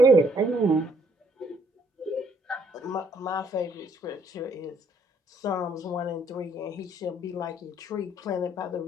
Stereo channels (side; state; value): both; normal; correlation 0.66